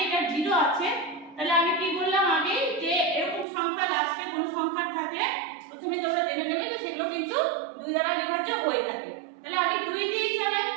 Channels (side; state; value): left; drops out; at 3.5 s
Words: এটা 0 আছে, তাহলে আমি কি বললাম আগে যে এরকম সংখ্যা লাস্টে কোন সংখ্যা থাকলে প্রথমে তোমরা জেনে নেবে যে সেগুলো কিন্তু 2 দ্বারা বিভাজ্য হয়ে থাকে। তাহলে আমি 2 দিয়ে চালাই,